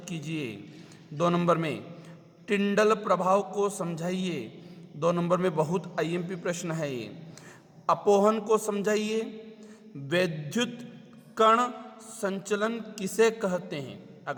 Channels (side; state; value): both; identical; correlation 1.00